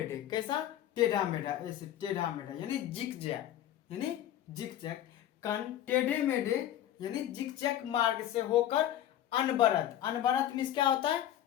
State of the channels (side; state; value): right; quieter; 11.9 dB